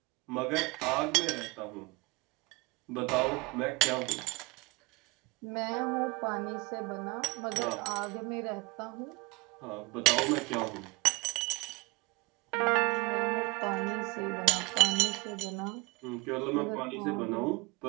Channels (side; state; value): left; quieter; 25.7 dB